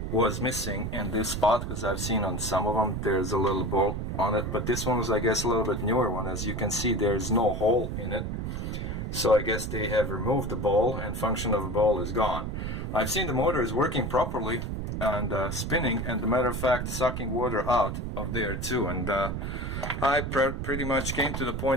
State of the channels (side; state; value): right; noise; rumble, 4 dB below the sound